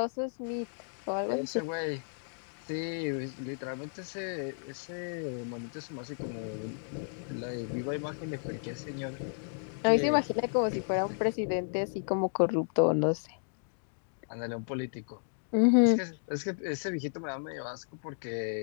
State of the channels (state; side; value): silent; right; digital silence